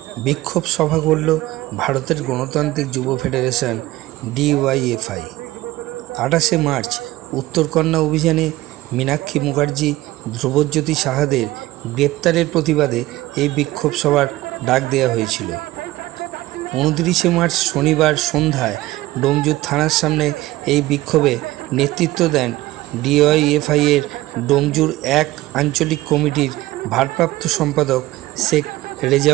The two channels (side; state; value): left; quieter; 17.6 dB